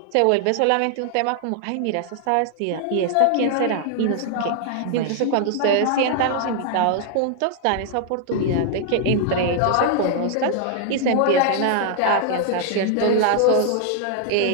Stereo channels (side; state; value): both; different; correlation 0.00